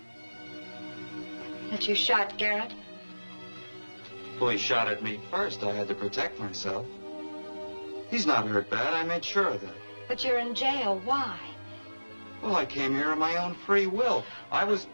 That you shot Garrett? Well, he shot at me first. I had to protect myself. He's not hurt bad. I made sure of that. But you're in jail. Why? Well, I came here of my own free will. I was...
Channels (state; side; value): inverted; both; correlation -1.00